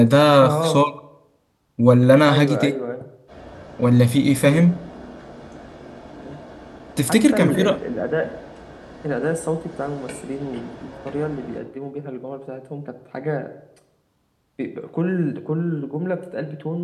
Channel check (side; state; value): both; identical; correlation 1.00